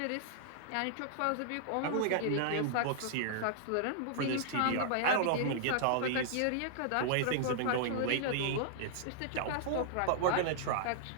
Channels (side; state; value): both; different; correlation -0.01